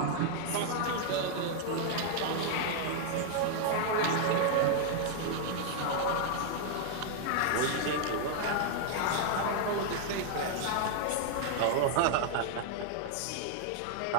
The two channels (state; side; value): different; both; correlation 0.00